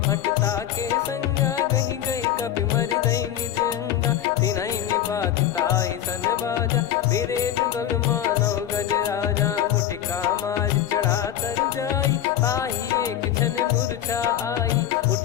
के संगा गही गही कपि मरि दई निज अंगा तिन्है निपाति ताहि सन बाजा बिरे जुगल मानव गज राजा मुटिका मार चढ़ा तरु जाई ताहि एक क्षण मूर्छा आई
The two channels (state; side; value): quieter; right; 10.9 dB